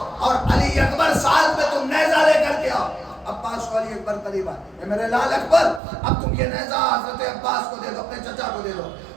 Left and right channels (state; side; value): drops out; left; at 5.8 s